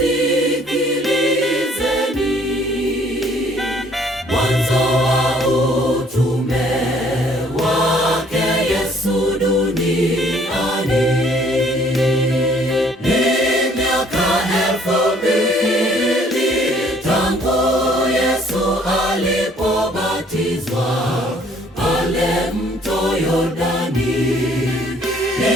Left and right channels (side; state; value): both; normal; correlation 0.60